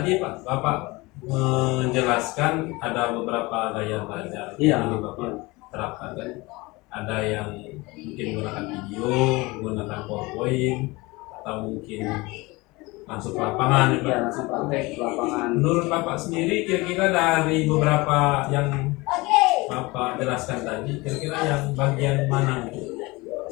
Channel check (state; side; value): quieter; right; 23.2 dB